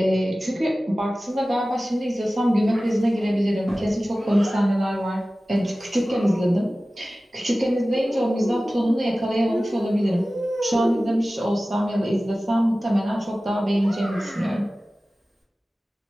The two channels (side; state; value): both; normal; correlation 0.96